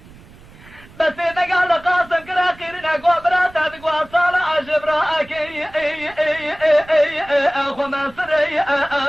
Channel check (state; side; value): noise; right; rumble, 22 dB below the sound